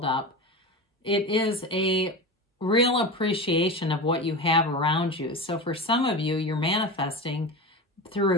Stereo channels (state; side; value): normal; both; correlation 0.26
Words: up. It is a real appreciation of what you have around you. So for some of you, you're manifesting